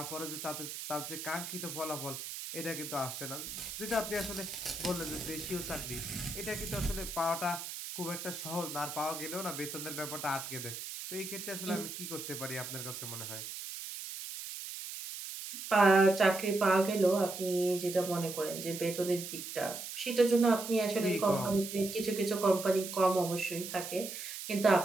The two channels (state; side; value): noise; right; hiss, 8 dB below the sound